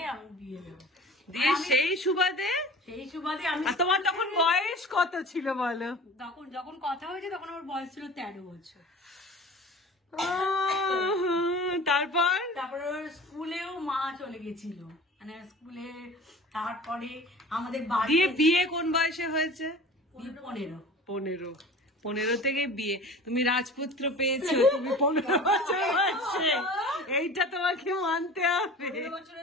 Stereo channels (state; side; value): normal; both; correlation 0.40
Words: আমি বিয়ে দেবো। সেই সুবাদে আমি, তোমার তখন বয়স কত ছিল বলো? তখন যখন কথা হয়েছে তখন আমার বয়স ছিল 13 বছর। তারপর স্কুলেও মা চলে গেছিল, মানে স্কুলে। তারপরে আমাদের বাড়ি বিয়ে কোন বয়সে হয়েছে? 15 থেকে বিয়ে। তুমি রাজপুত্র পেয়েছো তুমি 15 বছর বয়সে, এইটা তোমাকে মানতে হবে। 15